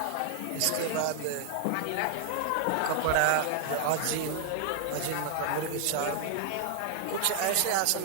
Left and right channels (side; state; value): both; different; correlation 0.00